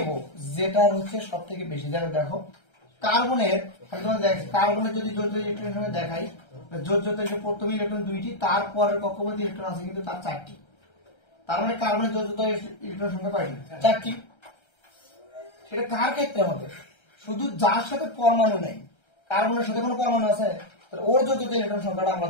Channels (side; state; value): right; late; 1.3 ms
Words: যেটার হচ্ছে সব থেকে বেশি। যেমন দেখো কার্বনের, কার্বনের যদি যোজ্যতা ইলেকট্রন সংখ্যা দেখাই, যোজ্যতা প্রথম ইলেকট্রন 2টি, তারপরের কক্ষপথে ইলেকট্রন আছে কিন্তু তার 4টি। তার মানে কার্বনের যোজ্যতা ইলেকট্রন সংখ্যা কয়টি, 4টি। সেটা কার ক্ষেত্রে হবে, শুধু যার সাথে পরমাণু নেই, কার্বনের সাথে কোনো পরমাণু আছে, ওর যোজ্যতা ইলেকট্রন সংখ্যাটা আমরা